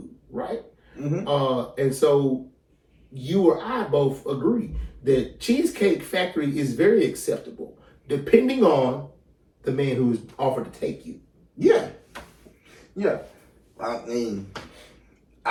right? And so you or I both agree that Cheesecake Factory is very acceptable, depending on the man who is offered to take you. Yeah. Yeah. I mean,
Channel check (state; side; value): identical; both; correlation 1.00